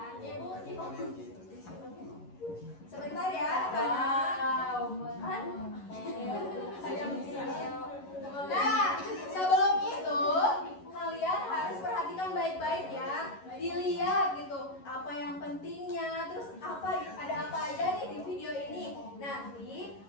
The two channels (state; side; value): late; right; 11 ms